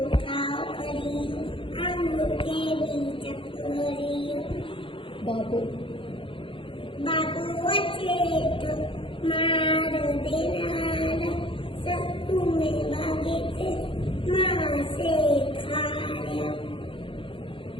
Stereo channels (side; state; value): right; late; 0.25 ms